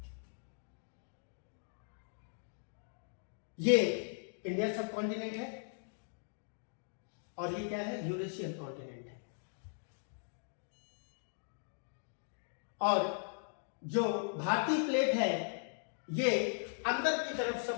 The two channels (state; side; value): silent; right; digital silence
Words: ये इंडिया सब कॉन्टिनेंट है और ये क्या है, यूरेशियन कॉन्टिनेंट है। और जो भारतीय प्लेट है ये अंदर की तरफ